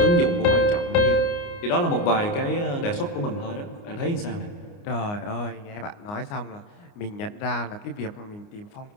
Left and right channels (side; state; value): right; late; 29 ms